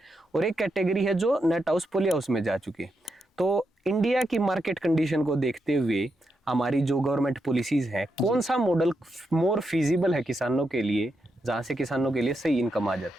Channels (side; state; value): both; normal; correlation 0.84